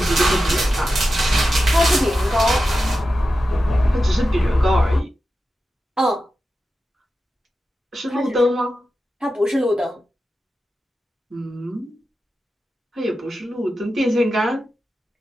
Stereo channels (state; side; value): normal; both; correlation 0.92